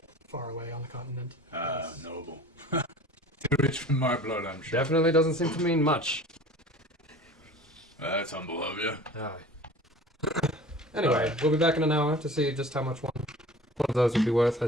far away on the continent. Noble. Too rich for my blood, I'm sure. Definitely doesn't seem to mean much. That's humble of you. Aye. Anyway, we'll be back in an hour to see just how much one of those would be worth, I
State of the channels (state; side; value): normal; both; correlation 0.43